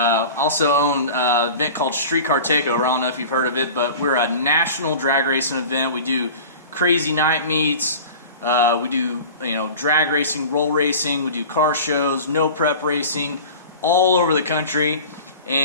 own an event called Streetcar Takeover. I don't know if you've heard of it, but we're a national drag racing event. We do crazy night meets. We do, drag racing, roll racing. We do car shows, no prep racing, all over the country.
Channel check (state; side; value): inverted; both; correlation -0.37